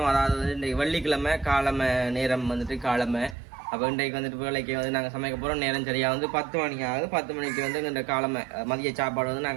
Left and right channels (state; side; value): drops out; left; at 3.4 s